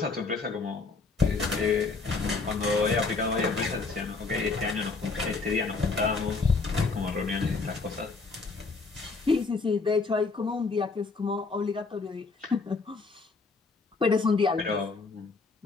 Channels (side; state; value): right; quieter; 4.1 dB